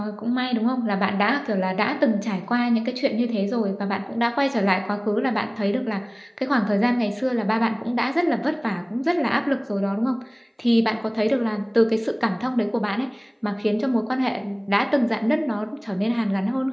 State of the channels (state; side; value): identical; both; correlation 1.00